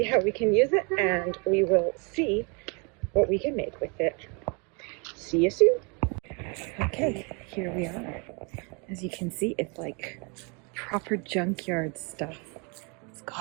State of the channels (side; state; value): left; quieter; 32.9 dB